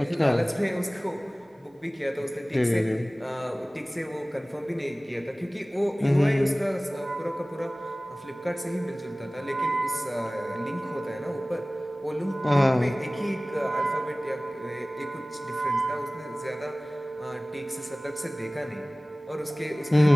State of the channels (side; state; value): both; normal; correlation 0.98